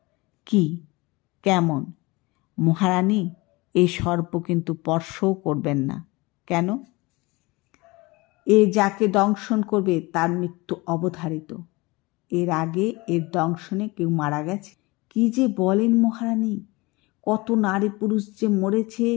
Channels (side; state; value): right; quieter; 23.4 dB